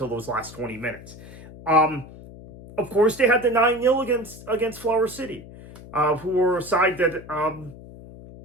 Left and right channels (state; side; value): noise; left; hum, 17 dB below the sound